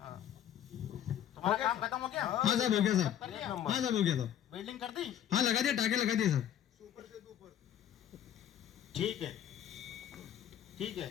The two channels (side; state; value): right; quieter; 10.4 dB